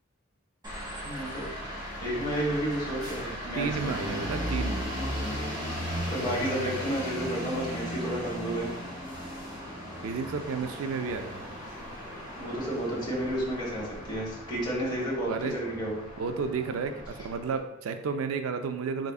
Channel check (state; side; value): normal; both; correlation 0.39